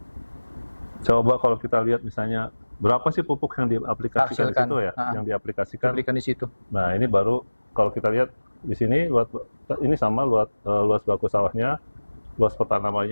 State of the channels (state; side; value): inverted; both; correlation -1.00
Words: Coba kalau kita lihat misalnya berapa sih pupuk yang diaplikasikan di situ ya, yang diaplikasikan. Di situ. Nah, ini baru kalau kita lihat di sini ini sama luas baku sawahnya, luas